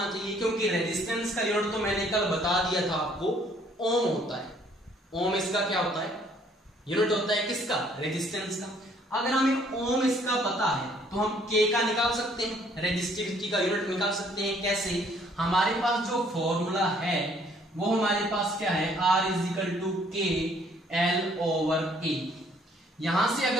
चाहिए, क्योंकि रेजिस्टेंस का यूनिट तो मैंने कल बता दिया था आपको, ओम होता है। ओम इसका क्या होता है, यूनिट होता है किसका, रेजिस्टेंस का। अगर हमें ओम इसका पता है तो हम K का निकाल सकते हैं, रेजिस्टिविटी का यूनिट निकाल सकते हैं। कैसे, हमारे पास जो फॉर्मूला है वो हमारे पास क्या है, R is equal to K L/A। यहां से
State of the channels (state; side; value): normal; both; correlation 0.62